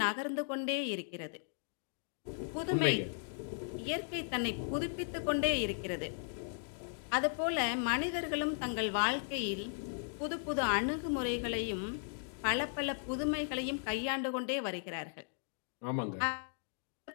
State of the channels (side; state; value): right; silent; digital silence